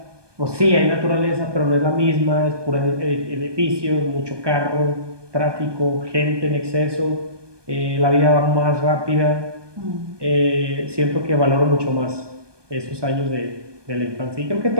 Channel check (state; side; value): late; left; 1.2 ms